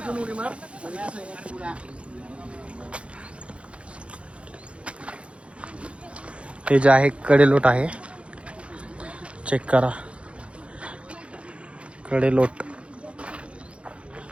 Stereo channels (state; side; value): late; left; 0.060 ms